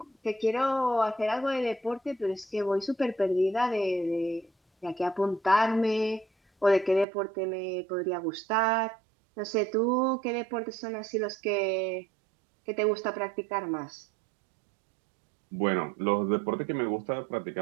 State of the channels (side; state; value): left; drops out; at 7.1 s